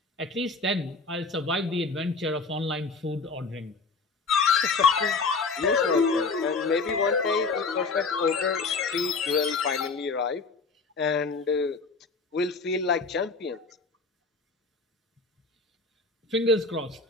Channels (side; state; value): right; quieter; 4.1 dB